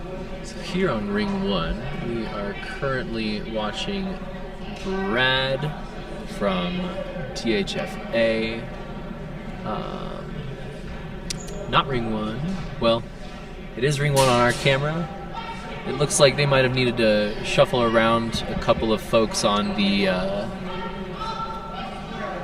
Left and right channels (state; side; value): identical; both; correlation 1.00